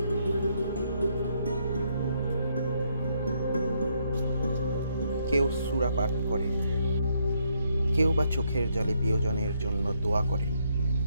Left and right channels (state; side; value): inverted; both; correlation -0.74